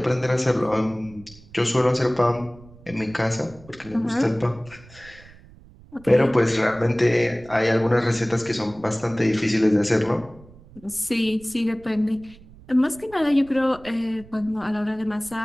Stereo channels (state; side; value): noise; right; rumble, 22 dB below the sound